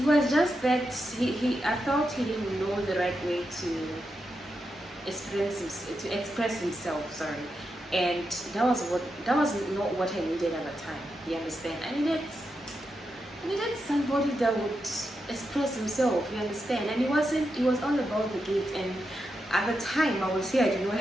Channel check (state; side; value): normal; both; correlation 0.86